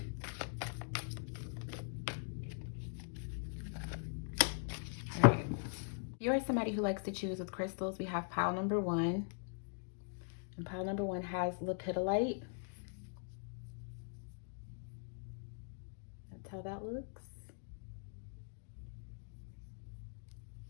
All right. If you are somebody who likes to choose with crystals, we have pile number 1. And pile number 1 has Lepidolite. That's how that looks.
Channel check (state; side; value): silent; right; digital silence